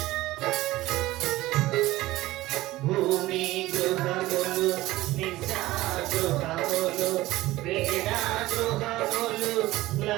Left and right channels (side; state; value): left; quieter; 17.5 dB